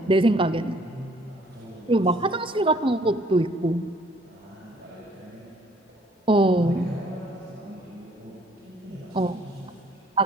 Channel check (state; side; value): normal; both; correlation 0.60